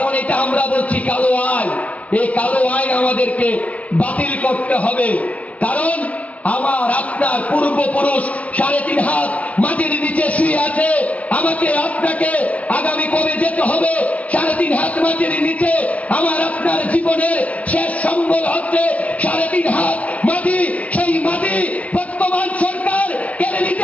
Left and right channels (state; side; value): late; right; 0.070 ms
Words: এটা আমরা বলছি কালো আইন। এই কালো আইন আমাদেরকে বাতিল করতে হবে। কারণ আমার আপনার পূর্বপুরুষ 3.5 হাত মাটির নিচে শুয়ে আছে। আমাকে আপনাকে আগামী কবে যেতে হবে 3.5 হাত মাটির নিচে? আমার আপনার জীবনের শেষ সম্বল হচ্ছে 3.5 হাত মাটি। সেই মাটি বর্তমান সরকার কেড়ে